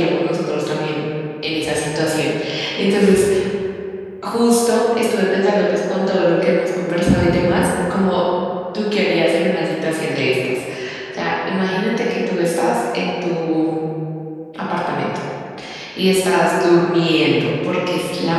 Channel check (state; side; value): identical; both; correlation 1.00